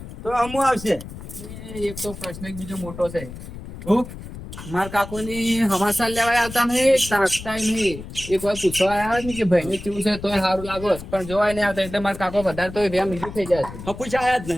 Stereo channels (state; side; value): noise; left; rumble, 12 dB below the sound